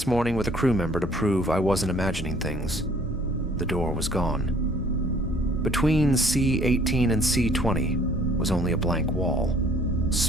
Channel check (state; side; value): normal; both; correlation 0.57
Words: morning with a crew member to prove I wasn't imagining things, the door was gone. Between C18 and C20 was only a blank wall,